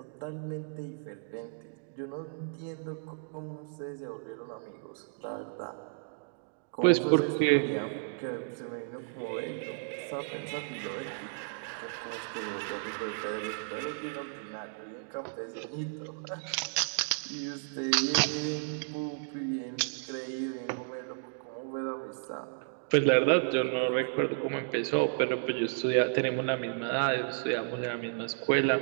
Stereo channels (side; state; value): left; silent; digital silence